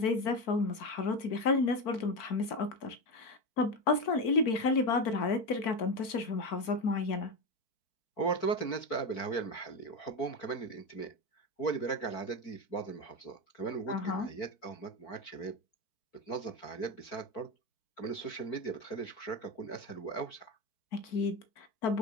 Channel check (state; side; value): late; right; 4.5 ms